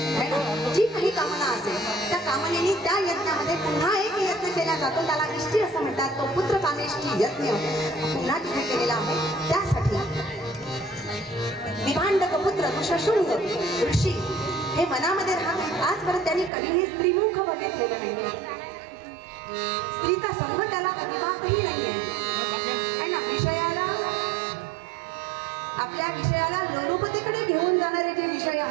जी काही कामना असेल त्या कामनेने त्या यज्ञामध्ये पुन्हा एक यज्ञ केला जातो, त्याला इष्टी असं म्हणतात. तो पुत्र कामेष्टी यज्ञ पुन्हा तिथे केलेला आहे. त्यासाठी विभांडक पुत्र ऋषशृंग ऋषी हे मनामध्ये राहतात. आजपर्यंत त्यांनी कधीही स्त्रीमुख बघितलेलं नाहीये, स्त्रीचा संग त्याला अजिबातही नाहीये है ना. विषयाला आपल्या विषयाला लोलुपतेकडे घेऊन जाणारे जे विषय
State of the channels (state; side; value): drops out; left; at 16.5 s